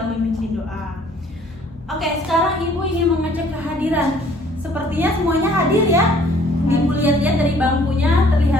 memimpin doa. Oke, sekarang Ibu ingin mengecek kehadiran. Sepertinya semuanya hadir ya. Ibu lihat-lihat dari bangkunya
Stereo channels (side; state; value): both; normal; correlation 0.58